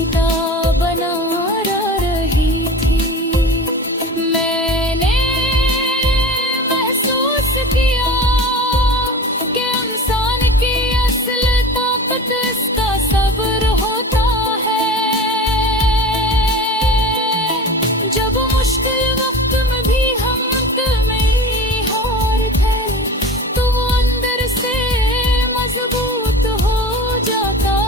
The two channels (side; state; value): both; normal; correlation 0.34